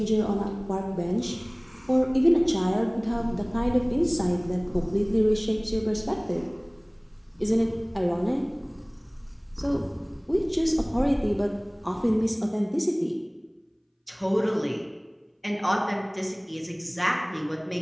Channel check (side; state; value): both; identical; correlation 1.00